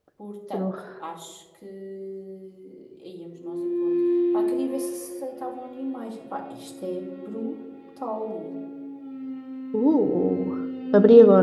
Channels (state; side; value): identical; both; correlation 1.00